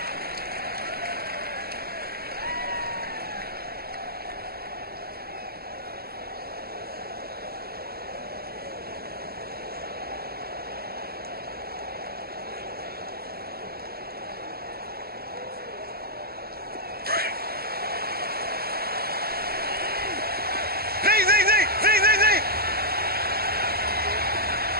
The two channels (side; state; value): left; late; 0.45 ms